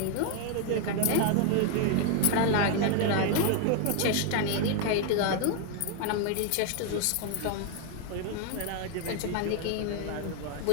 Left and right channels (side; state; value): both; different; correlation 0.00